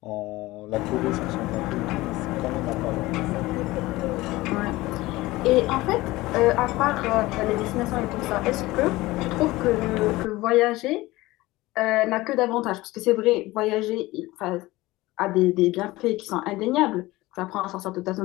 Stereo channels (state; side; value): quieter; right; 19.2 dB